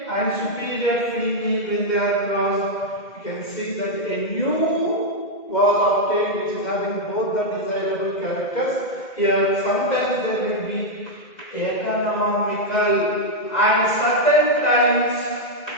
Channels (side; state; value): right; late; 2.0 ms